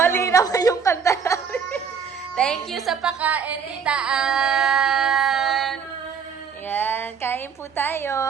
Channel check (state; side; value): quieter; left; 6.5 dB